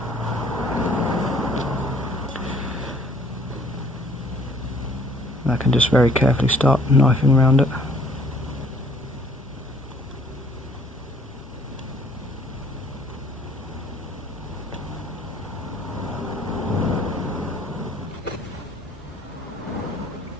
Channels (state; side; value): normal; both; correlation 0.59